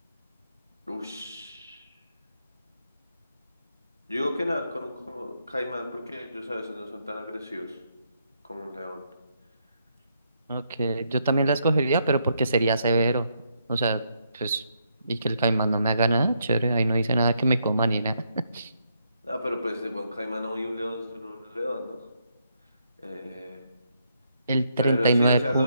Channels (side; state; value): both; inverted; correlation -0.77